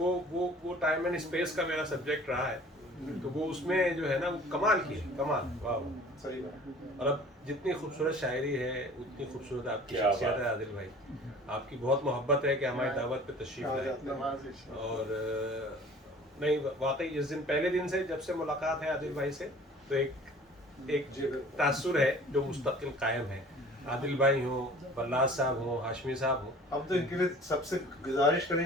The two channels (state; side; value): normal; both; correlation 0.47